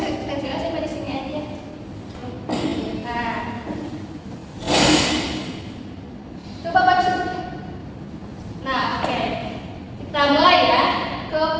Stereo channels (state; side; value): identical; both; correlation 1.00